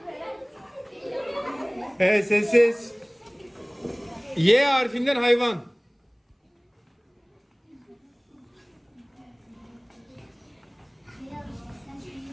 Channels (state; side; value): identical; both; correlation 1.00